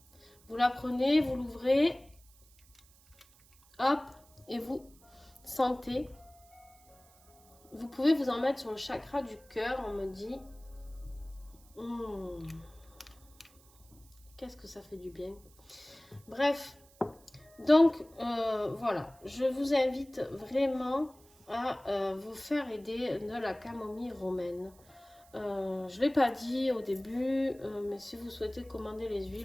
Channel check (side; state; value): right; noise; hiss, 27 dB below the sound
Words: Vous la prenez, vous l'ouvrez, hop, et vous sentez. Vous pouvez vous en mettre sur le chakra du cœur, on me dit. Qu'est-ce que ça fait du bien. Bref, donc voilà, je vous invite vraiment à vous faire aider de la camomille romaine. Je ne l'ai pas dit au début, mais si vous souhaitez commander les